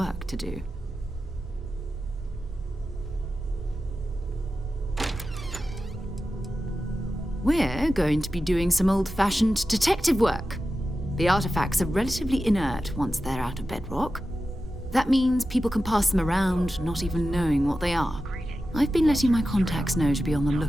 to do. We're going to be doing some old-fashioned detective work. The artifacts are relatively inert once they're out of bedrock. That means people can pass them around, not even knowing what they are. I've been letting my contacts know to be on the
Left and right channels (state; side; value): normal; both; correlation 0.92